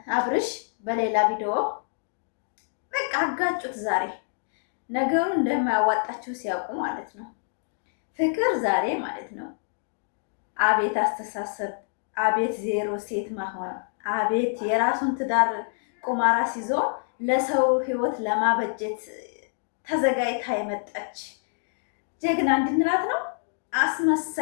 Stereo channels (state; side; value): silent; right; digital silence